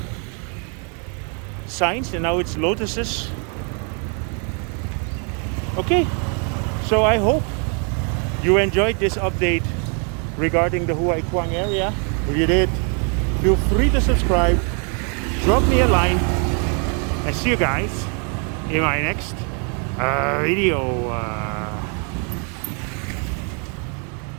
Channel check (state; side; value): quieter; left; 39.0 dB